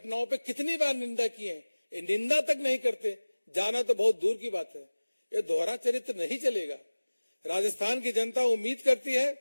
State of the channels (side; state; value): both; inverted; correlation -1.00